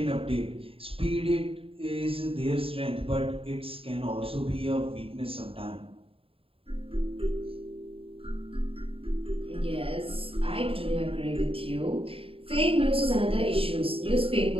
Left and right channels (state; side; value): late; left; 0.27 ms